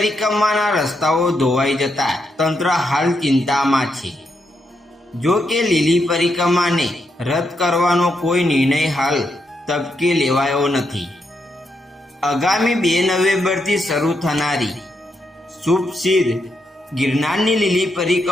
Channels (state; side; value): normal; both; correlation 0.81